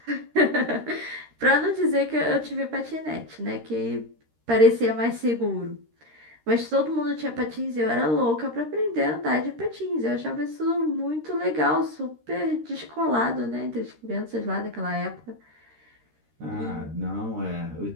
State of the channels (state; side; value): late; left; 13 ms